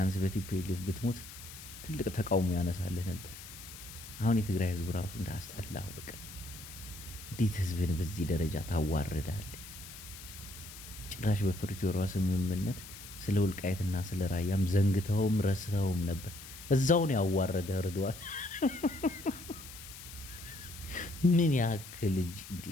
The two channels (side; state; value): left; noise; hiss, 14 dB below the sound